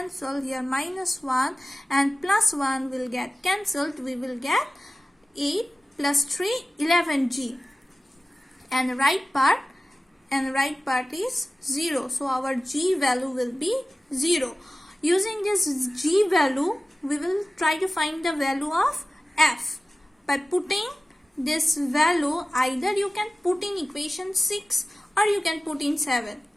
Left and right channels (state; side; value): normal; both; correlation 0.95